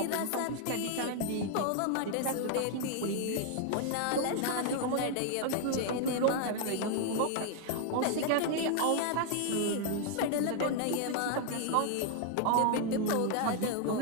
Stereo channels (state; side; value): different; both; correlation 0.00